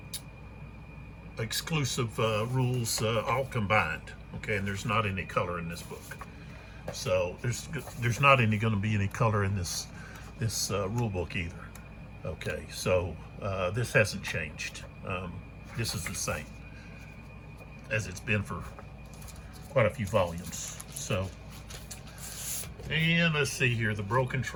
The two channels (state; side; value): identical; both; correlation 1.00